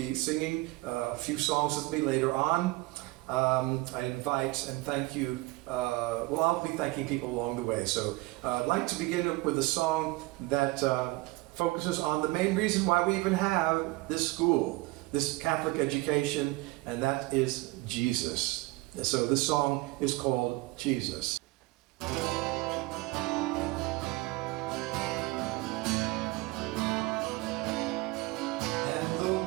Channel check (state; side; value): quieter; left; 21.8 dB